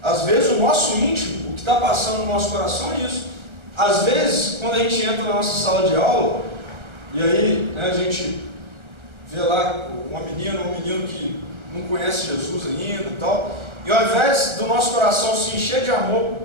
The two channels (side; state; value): left; late; 1.3 ms